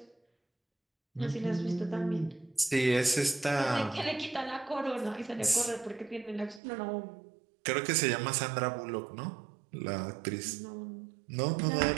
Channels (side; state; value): left; drops out; at 6.6 s